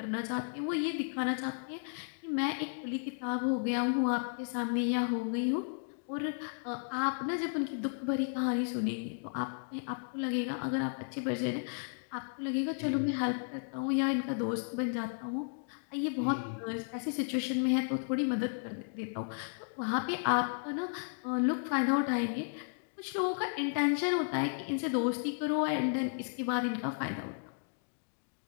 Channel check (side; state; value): right; silent; digital silence